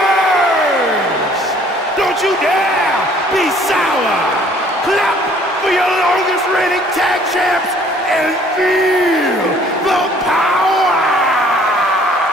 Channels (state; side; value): normal; both; correlation 0.58